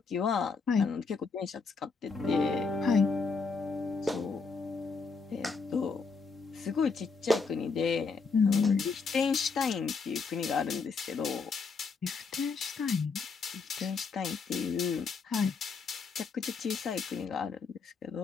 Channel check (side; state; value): right; quieter; 4.8 dB